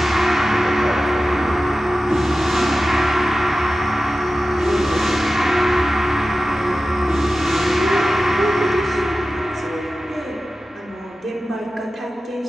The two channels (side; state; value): both; normal; correlation 0.94